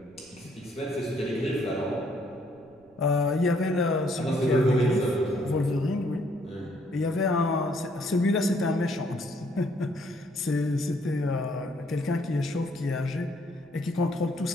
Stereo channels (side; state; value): right; noise; rumble, 29 dB below the sound